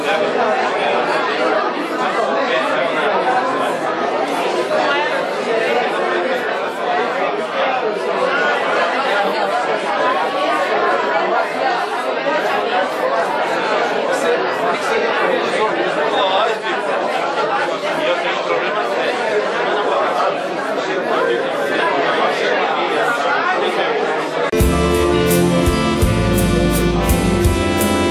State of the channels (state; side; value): identical; both; correlation 1.00